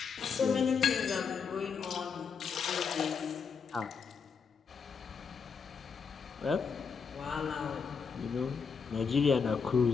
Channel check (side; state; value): right; quieter; 5.9 dB